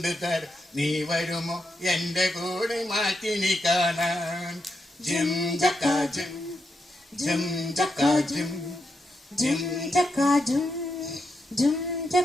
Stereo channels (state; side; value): normal; both; correlation 0.84